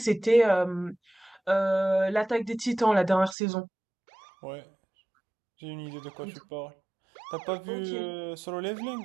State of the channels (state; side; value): drops out; left; at 3.4 s